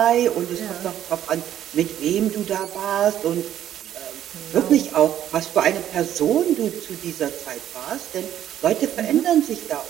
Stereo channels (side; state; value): left; quieter; 11.2 dB